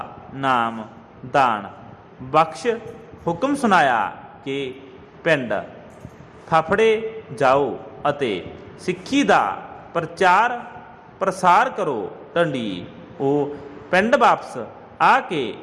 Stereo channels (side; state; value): both; identical; correlation 1.00